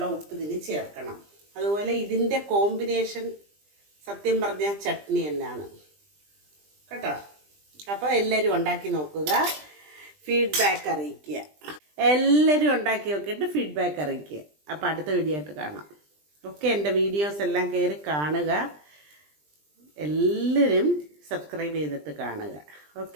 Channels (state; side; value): late; left; 20 ms